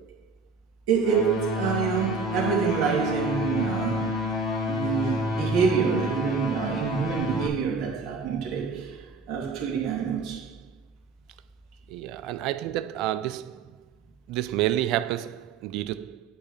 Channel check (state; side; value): quieter; left; 4.4 dB